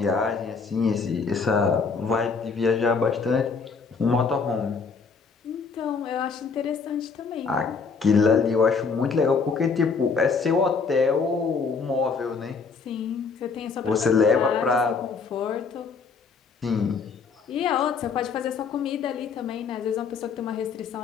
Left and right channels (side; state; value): right; quieter; 5.1 dB